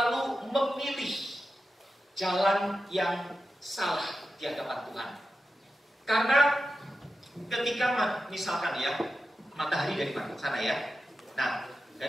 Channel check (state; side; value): normal; both; correlation 0.91